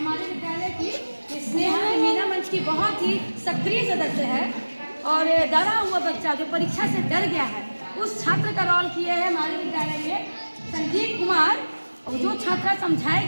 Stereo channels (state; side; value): inverted; both; correlation -1.00